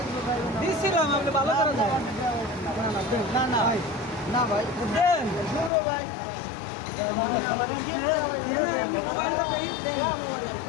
ভাই দিছিলাম আপনি ভালো করে দেন না না ভাই না ভাই দেন পুরো ভাই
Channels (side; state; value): right; drops out; at 5.7 s